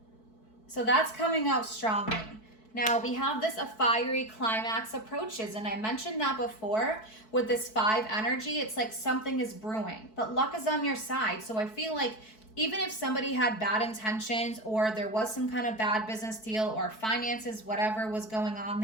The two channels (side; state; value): right; late; 4.6 ms